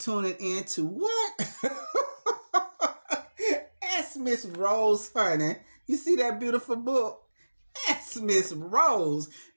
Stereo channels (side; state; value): both; inverted; correlation -1.00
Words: in to what? Ask Miss Rose, honey. You see that beautiful book? Ask Miss Rose.